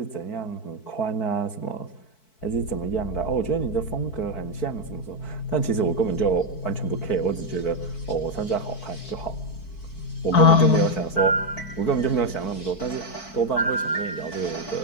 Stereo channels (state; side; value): late; right; 4.6 ms